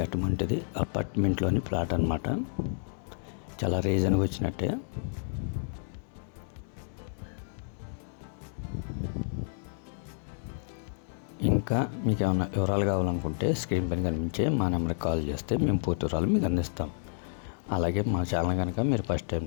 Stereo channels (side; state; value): right; silent; digital silence